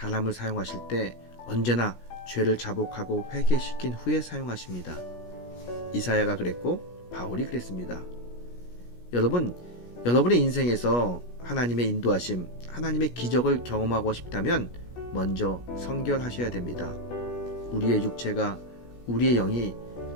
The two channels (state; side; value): late; right; 17 ms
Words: 사용하실 때 언제나 죄를 자복하고 회개시킨 후에 사용하십니다. 이사야가 그랬고 바울이 그랬습니다. 여러분의 인생에서 하나님의 인도하심, 하나님의 기적을 경험하고 싶다면 먼저 성결하셔야 됩니다. 우리의 육체가, 우리의 영이